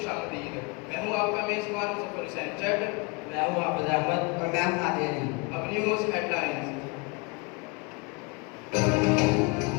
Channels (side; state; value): right; quieter; 29.3 dB